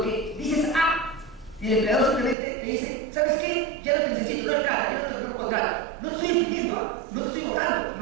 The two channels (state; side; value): drops out; left; at 2.4 s